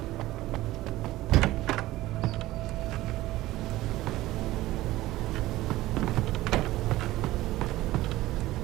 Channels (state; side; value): quieter; left; 16.8 dB